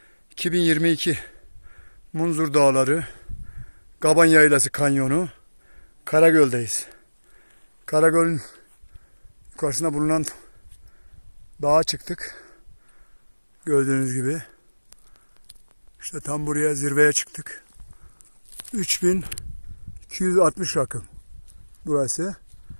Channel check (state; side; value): inverted; both; correlation -1.00